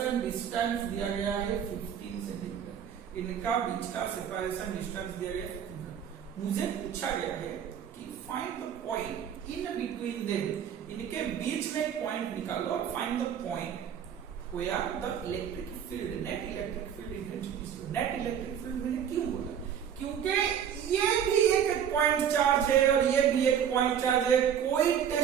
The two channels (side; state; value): left; quieter; 8.7 dB